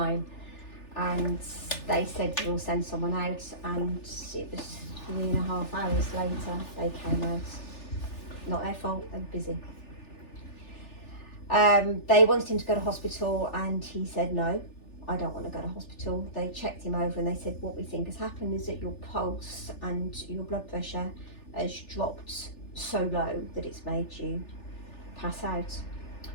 and they said we'll send someone out, and it was 3.5 hours later they came out. Not their fault, they were busy. They wanted him to go to hospital, and he said no, I don't want to go to hospital. They checked him over and they said, what we think has happened is that your pulse and your blood pressure has dropped so low that it's made you pass out.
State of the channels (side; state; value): right; late; 3.4 ms